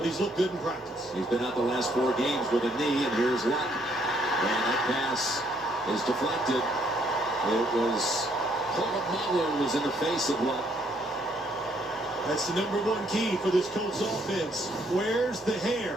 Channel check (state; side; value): normal; both; correlation 0.68